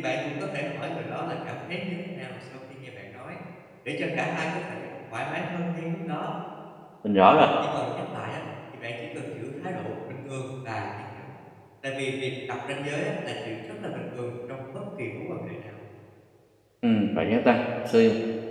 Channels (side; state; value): both; identical; correlation 1.00